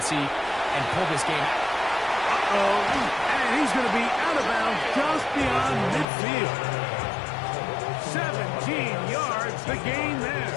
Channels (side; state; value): right; drops out; at 6.1 s